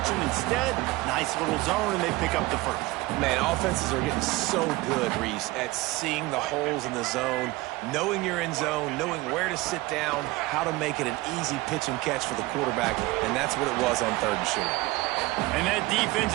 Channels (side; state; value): left; quieter; 20.4 dB